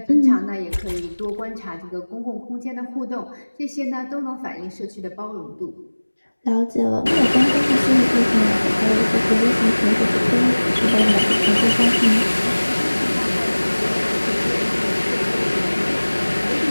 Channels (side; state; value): both; inverted; correlation -1.00